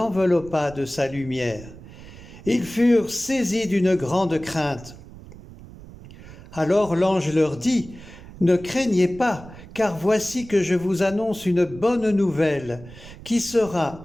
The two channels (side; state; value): right; noise; rumble, 17 dB below the sound